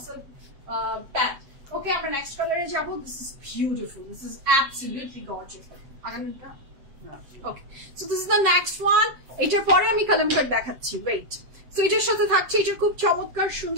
silk pant. Okay, our next color is jabo. This is beautiful. This is absolutely gorgeous. Aganur. Okay, so this is the next one. এটার পরে আমি কালামকার দেখাচ্ছি, ওয়েট। সো এটার সাথে থাকছে এটা খুব চমৎকার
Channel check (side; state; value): left; late; 7.8 ms